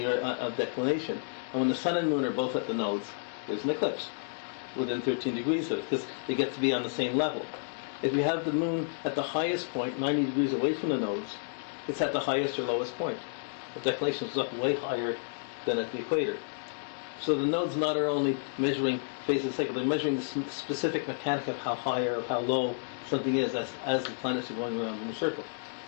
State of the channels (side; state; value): right; silent; digital silence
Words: declination. And when the sun and moon are both at the nodes, there's an eclipse within 13 degrees of it, because they get to be on the same level. If you have the moon at the highest point, 90 degrees away from the nodes, it's at the highest or lowest point. The declination is up way higher than at the equator. So the nodes not are only measuring phases of the cycle, they're measuring the specific mechanic of how high or how low something is as the planets are going around in a circle.